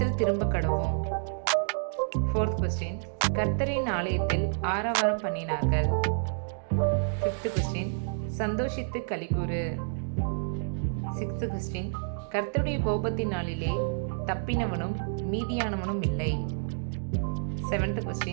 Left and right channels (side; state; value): left; silent; digital silence